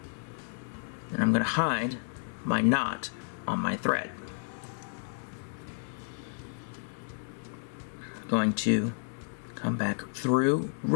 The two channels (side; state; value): right; silent; digital silence